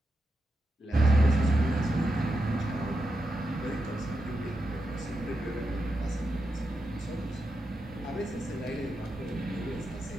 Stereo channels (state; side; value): normal; both; correlation 0.87